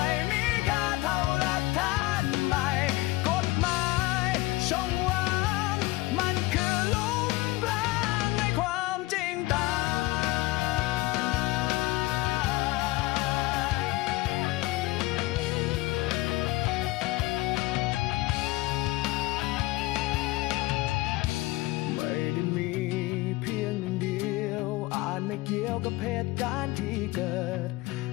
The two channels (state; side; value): quieter; right; 19.8 dB